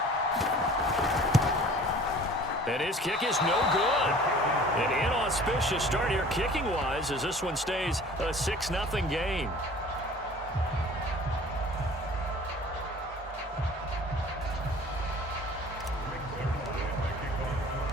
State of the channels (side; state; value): both; normal; correlation 0.47